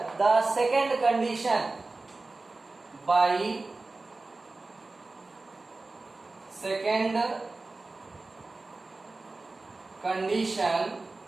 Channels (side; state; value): left; quieter; 3.4 dB